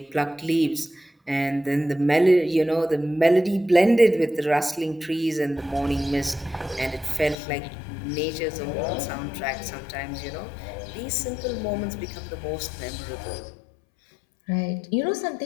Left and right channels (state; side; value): drops out; right; at 7.4 s